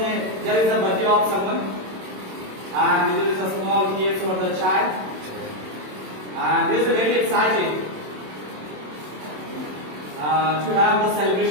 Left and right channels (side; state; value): left; late; 27 ms